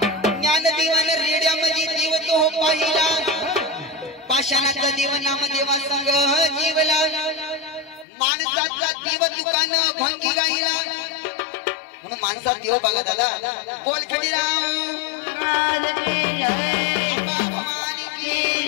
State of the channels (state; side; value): drops out; right; at 8.1 s